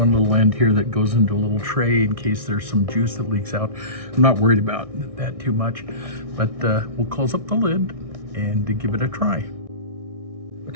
little end here that goes into a little tray in case there's some juice that leaks out. I'm not worried about that too much, but we'll close up the lid and give it a try.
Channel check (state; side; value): late; left; 1.6 ms